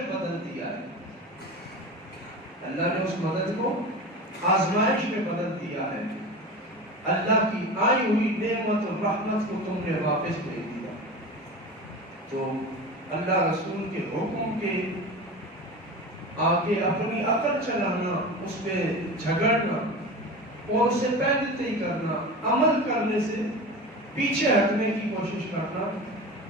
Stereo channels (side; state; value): both; normal; correlation 0.30